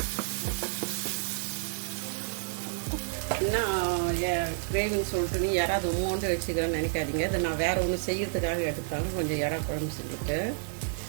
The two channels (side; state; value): left; silent; 58 dB below the other